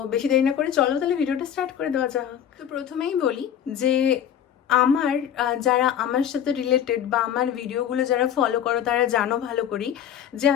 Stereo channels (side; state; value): right; quieter; 9.5 dB